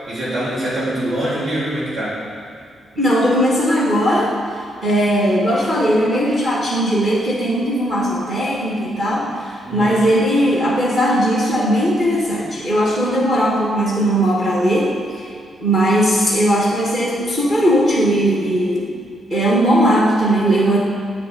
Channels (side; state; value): both; normal; correlation 0.74